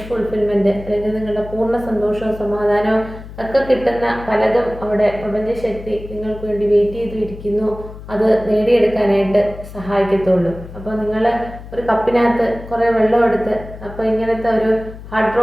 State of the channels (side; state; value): left; noise; hum, 14 dB below the sound